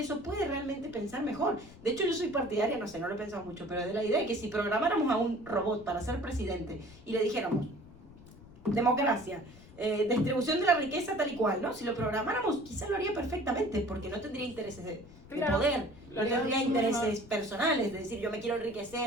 puede realmente pensar mejor. De hecho, yo soy partidaria, no sé, no lo he pensado mucho, pero de la idea de que si programáramos a un robot para ser presidente y le dijéramos, democracia, distribución de la riqueza tal y cual, ¿no? Si lo programáramos, quizás lo haría perfectamente, porque no tendría intereses de poder, no tendría intereses personales, de decir, yo me quiero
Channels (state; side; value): noise; left; rumble, 20 dB below the sound